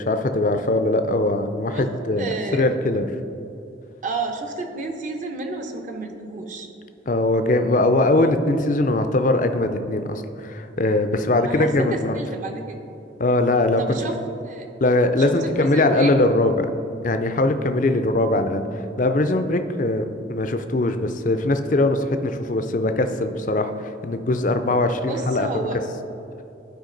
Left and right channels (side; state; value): both; normal; correlation 0.38